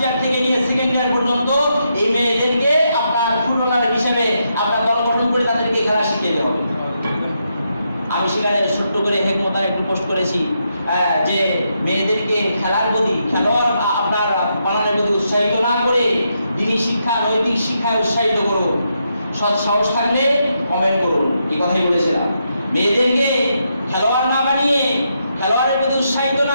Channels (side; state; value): both; inverted; correlation -0.81